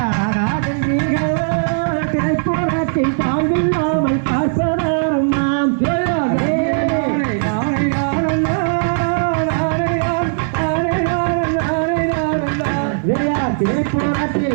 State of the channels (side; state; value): left; silent; 55 dB below the other